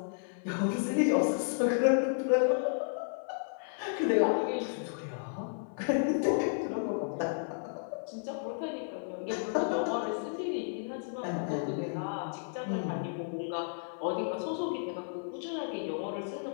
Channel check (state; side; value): silent; right; 56 dB below the other